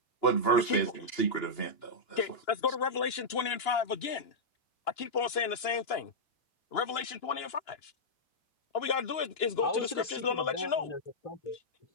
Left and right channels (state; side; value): late; right; 2.9 ms